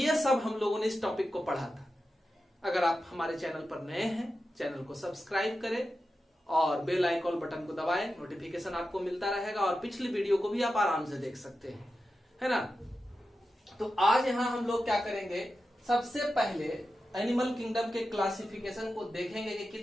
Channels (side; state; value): both; normal; correlation 0.91